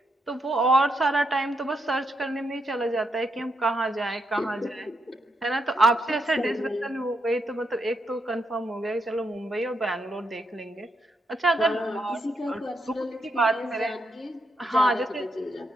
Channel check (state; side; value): normal; both; correlation 0.81